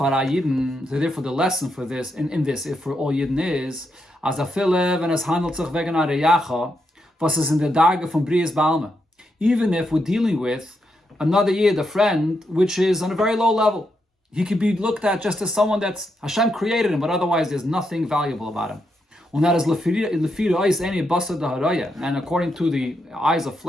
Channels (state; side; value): normal; both; correlation 0.82